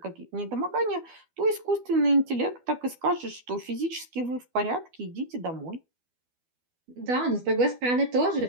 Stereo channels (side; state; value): left; late; 12 ms